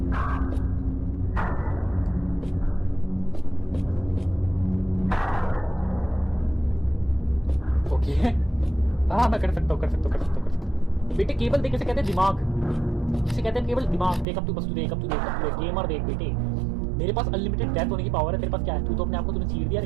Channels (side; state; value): left; drops out; at 14.2 s